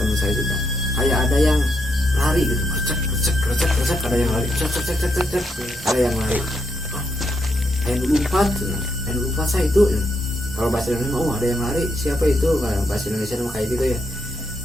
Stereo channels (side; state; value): both; normal; correlation 0.79